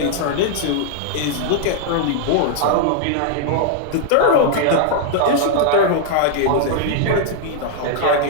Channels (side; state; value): both; different; correlation -0.01